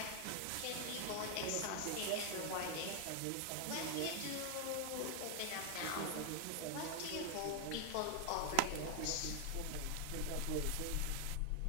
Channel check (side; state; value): both; different; correlation 0.01